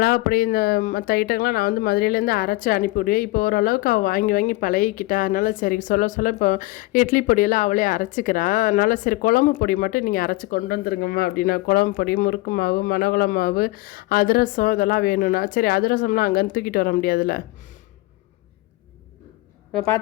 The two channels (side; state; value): right; quieter; 20.2 dB